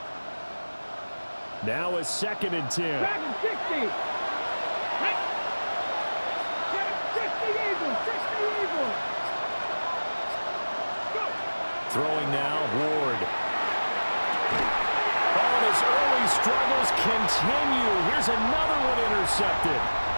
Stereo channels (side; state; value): both; inverted; correlation -1.00